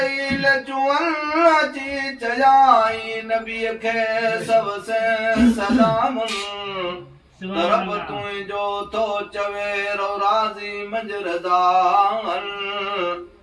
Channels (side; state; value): both; identical; correlation 1.00